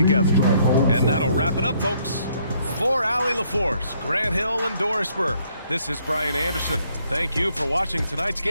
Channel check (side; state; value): both; inverted; correlation -0.68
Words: And that'll wrap it up, folks. For Allie LaForce, Grant Hill, and Doris Burke, this is Brian Anderson. Thank you for watching tonight's